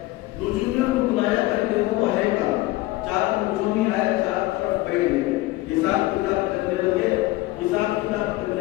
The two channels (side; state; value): right; quieter; 19.0 dB